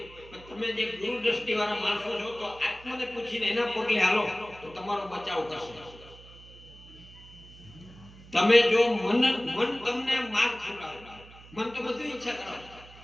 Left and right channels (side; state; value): right; noise; hum, 20 dB below the sound